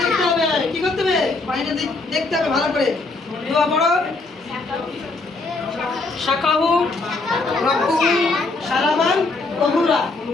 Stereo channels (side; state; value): right; quieter; 3.5 dB